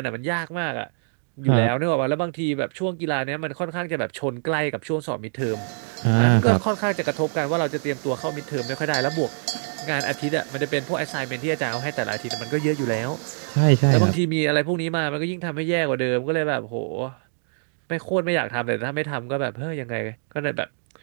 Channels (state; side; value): silent; left; digital silence